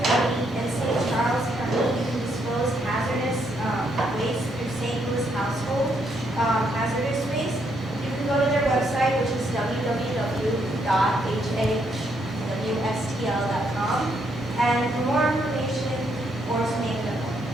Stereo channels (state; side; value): normal; both; correlation 0.74